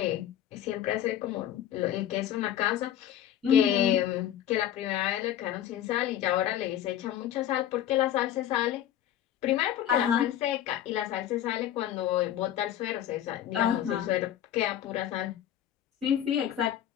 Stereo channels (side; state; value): right; quieter; 11.1 dB